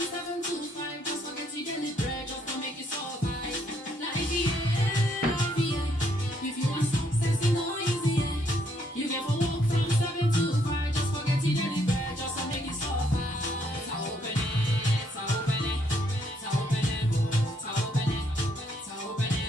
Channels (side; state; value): both; normal; correlation 0.71